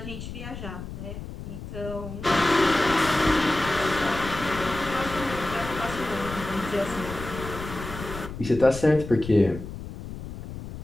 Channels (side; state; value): left; noise; rumble, 10 dB below the sound